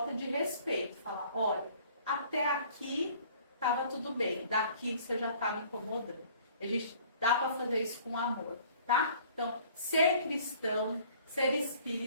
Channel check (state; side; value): inverted; both; correlation -0.53